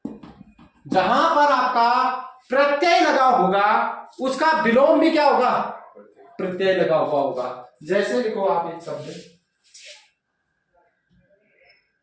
जहां पर आपका प्रत्यय लगा होगा उसका विलोम भी क्या होगा? प्रत्यय लगा हुआ होगा। जैसे लिखो आप एक शब्द,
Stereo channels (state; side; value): identical; both; correlation 1.00